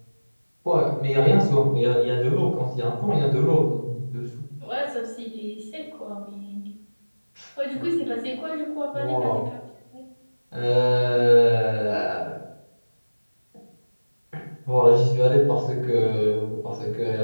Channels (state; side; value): inverted; both; correlation -1.00